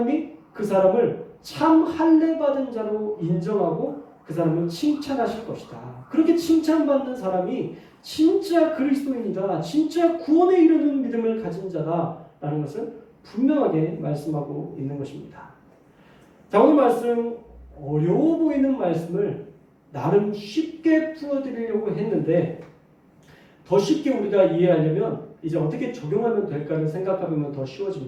그 사람을 참 할례 받은 자로 인정하고 그 사람을 칭찬하실 것이다. 그렇게 칭찬받는 사람이 진짜 그리스도인이다. 진짜 구원에 이르는 믿음을 가진 자다라는 것을 분명하게 말씀하고 있는 것입니다. 자, 오늘 말씀 어려워 보이는 말씀을 나름 쉽게 풀어드리려고 했는데 더 쉽게 우리가 이해하려면 이제 어떻게 적용하면 될까를 생각해보면 더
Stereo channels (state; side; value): identical; both; correlation 1.00